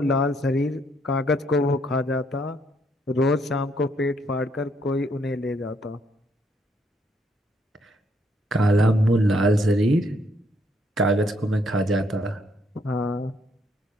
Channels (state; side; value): normal; both; correlation 0.71